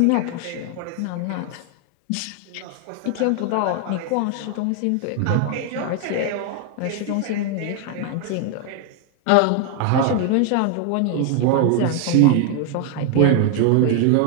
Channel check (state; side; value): different; both; correlation 0.00